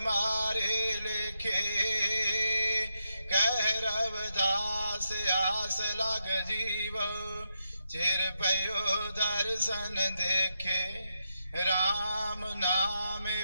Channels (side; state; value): both; inverted; correlation -0.83